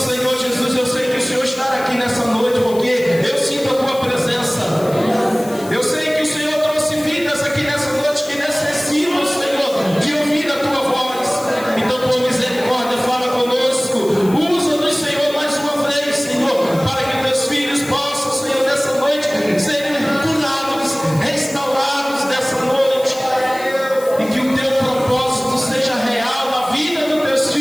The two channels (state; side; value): noise; left; hiss, 17 dB below the sound